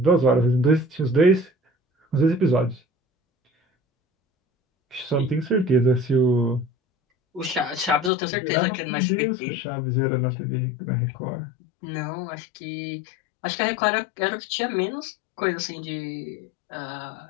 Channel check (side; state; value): right; drops out; at 8.1 s